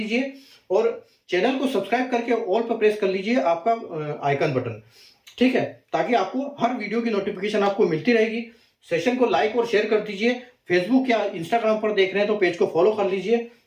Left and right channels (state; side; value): identical; both; correlation 1.00